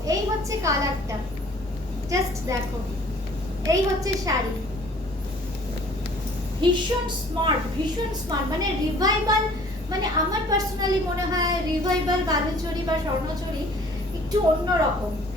এই হচ্ছে কালারটা, জাস্ট দেখো। এই হচ্ছে শাড়ি, ভীষণ স্মার্ট, ভীষণ স্মার্ট, মানে রিভাইভাল, মানে আমার পার্সোনালি মনে হয় রিভাইভাল বালুচরি বা স্বর্ণচরি একটু অন্যরকম,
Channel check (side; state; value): both; normal; correlation 0.53